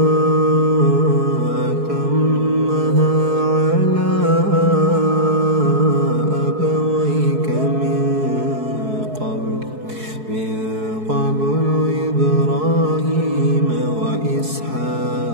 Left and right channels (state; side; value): late; left; 4.7 ms